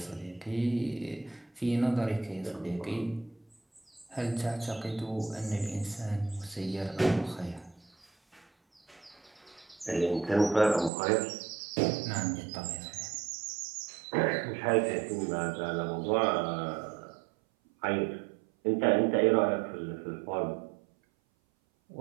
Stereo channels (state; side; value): drops out; left; at 10.9 s